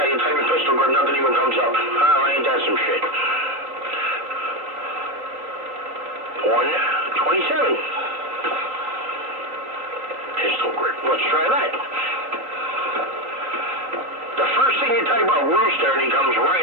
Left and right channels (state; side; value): late; left; 3.8 ms